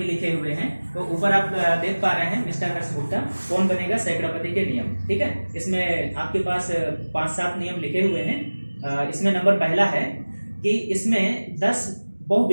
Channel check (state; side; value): inverted; both; correlation -1.00